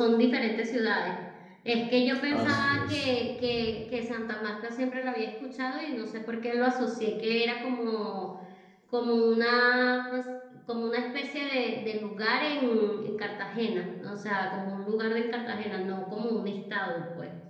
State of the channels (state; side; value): identical; both; correlation 1.00